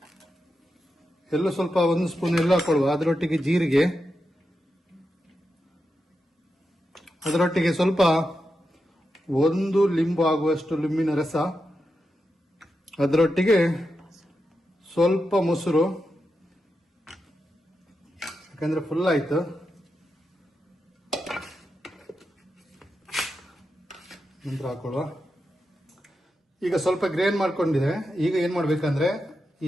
ಎಲ್ಲ ಸ್ವಲ್ಪ ಒಂದು ಸ್ಪೂನ್ ಎಲ್ಲ ಹಾಕೊಳ್ಳುವ. ಅದರೊಟ್ಟಿಗೆ ಜೀರಿಗೆ, ಅದರೊಟ್ಟಿಗೆ ಸ್ವಲ್ಪ ಒಂದು ಲಿಂಬು ಆಗುವಷ್ಟು ಲಿಂಬಿನ ರಸ, ಅದರೊಟ್ಟಿಗೆ ಸ್ವಲ್ಪ ಮೊಸರು, ಯಾಕಂದ್ರೆ ಫುಲ್ ಆಯ್ತು. ನಂತರ ಹಾಕೊಳ್ಳುವ. ಈಗ ಸ್ವಲ್ಪ ಗ್ರೈಂಡ್ ಮಾಡ್ಕೊಂಡಿದೆ. ಈಗ ಏನ್ ಮಾಡ್ಬೇಕಂದ್ರೆ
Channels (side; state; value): both; normal; correlation 0.88